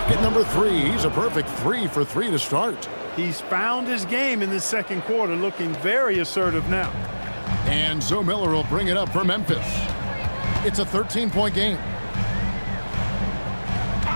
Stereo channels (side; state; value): both; inverted; correlation -1.00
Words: number 3. He's a perfect 3 for 3 to start. He's found his game in the second quarter, looking very assertive now. And Zoe Miller will bring it up for Memphis. It's a 13-point game.